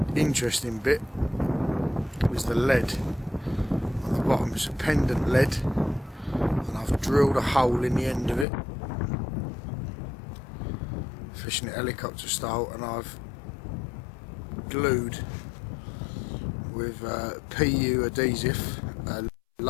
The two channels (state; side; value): drops out; right; at 8.5 s